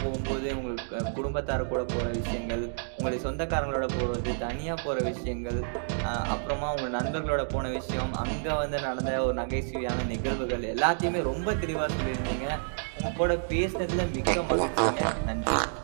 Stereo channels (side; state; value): left; silent; digital silence